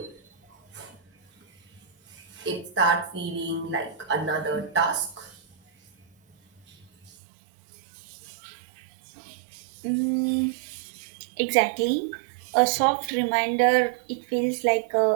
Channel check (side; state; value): left; drops out; at 7.1 s